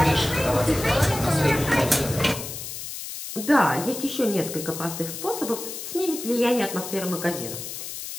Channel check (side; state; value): left; noise; hiss, 8 dB below the sound